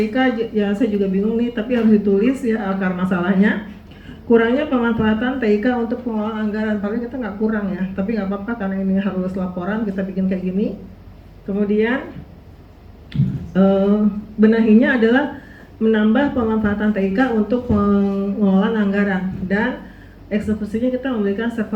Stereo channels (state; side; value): identical; both; correlation 1.00